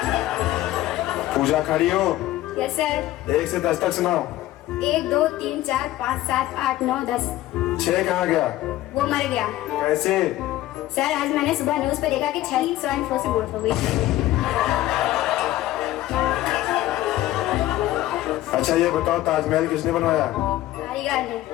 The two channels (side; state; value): right; quieter; 15.3 dB